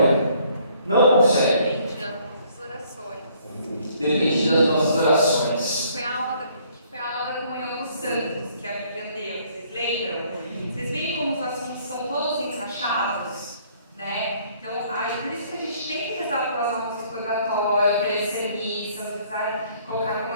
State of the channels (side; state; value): both; inverted; correlation -0.62